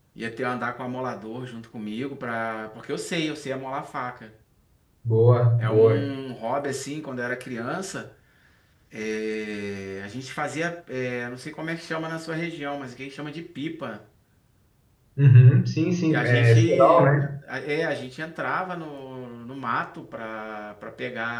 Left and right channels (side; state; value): both; identical; correlation 1.00